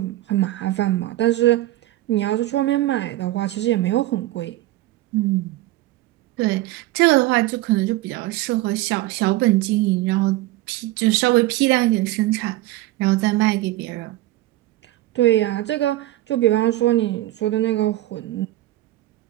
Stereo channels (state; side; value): quieter; left; 16.6 dB